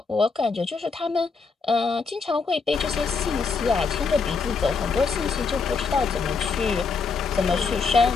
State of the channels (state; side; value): quieter; right; 4.8 dB